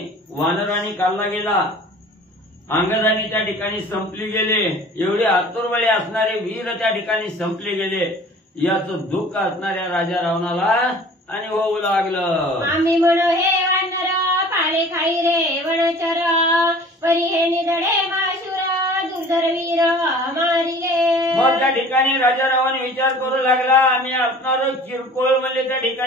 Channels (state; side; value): normal; both; correlation 0.46